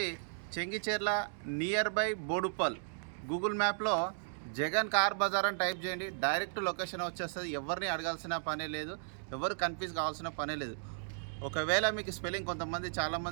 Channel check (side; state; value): left; silent; digital silence